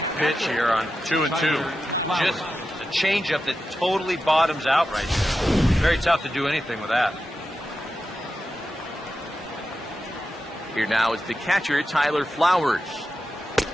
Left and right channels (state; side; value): normal; both; correlation 0.90